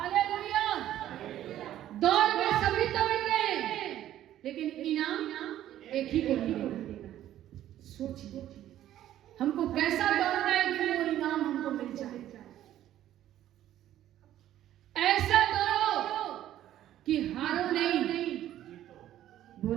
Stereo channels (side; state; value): left; quieter; 12.4 dB